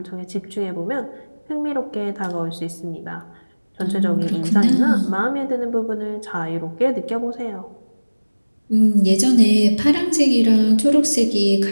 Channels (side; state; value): both; inverted; correlation -1.00